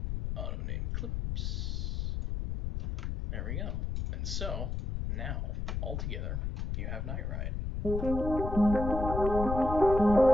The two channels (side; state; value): left; noise; rumble, 2 dB below the sound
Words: Auto name clips. There we go. And so, now, all together, you have Night Ride.